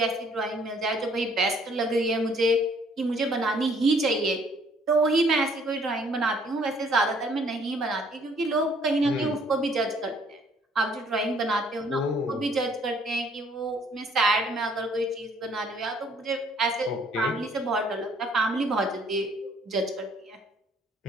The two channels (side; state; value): both; normal; correlation 0.62